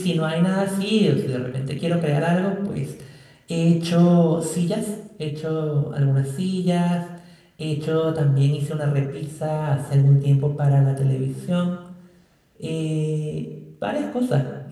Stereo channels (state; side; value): identical; both; correlation 1.00